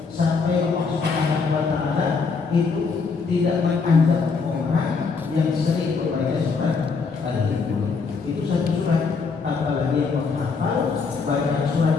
sampai Allah Subhanahu wa Ta'ala itu tidak menganggap orang yang sering membaca surat Al-Quran. Itu satu surat, apalagi yang menghafal banyak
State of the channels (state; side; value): quieter; right; 4.9 dB